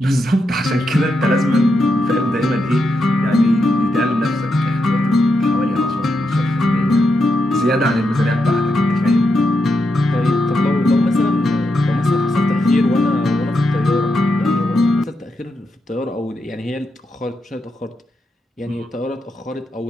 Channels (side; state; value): both; normal; correlation 0.84